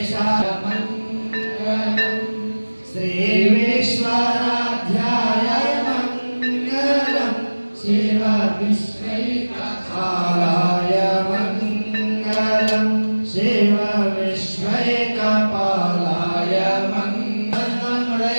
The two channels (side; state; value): both; inverted; correlation -1.00